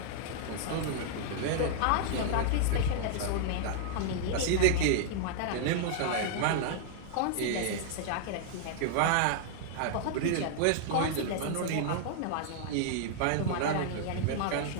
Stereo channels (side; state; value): both; different; correlation -0.01